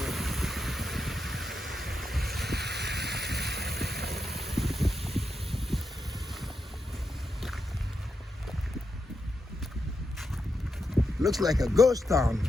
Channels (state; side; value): normal; both; correlation 0.86